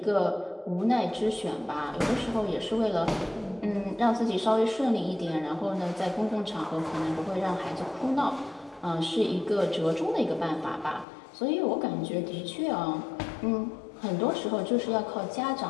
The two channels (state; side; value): drops out; right; at 11.1 s